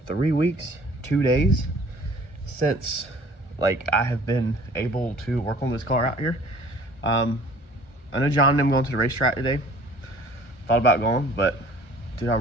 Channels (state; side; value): late; right; 1.4 ms